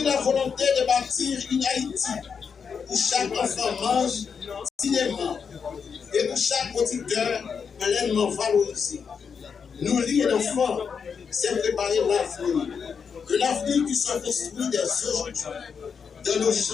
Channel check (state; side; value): quieter; right; 6.3 dB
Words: la volonté de bâtir une Haïti où chaque enfant mange dignement et où chaque producteur pleinement valorisé. Nourrir un enfant, c'est préparer l'avenir. Un avenir qui se construit dès aujourd'hui, dans nos